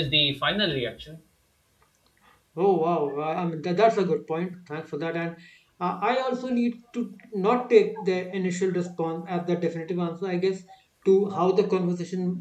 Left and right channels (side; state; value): both; identical; correlation 1.00